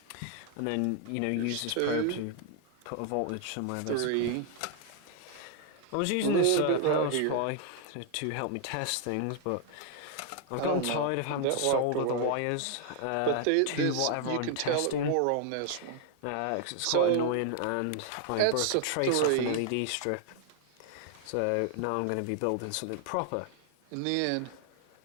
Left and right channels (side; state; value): both; different; correlation 0.00